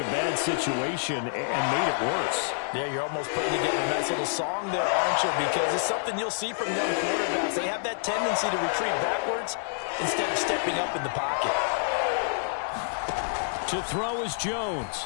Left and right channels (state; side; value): silent; right; 60 dB below the other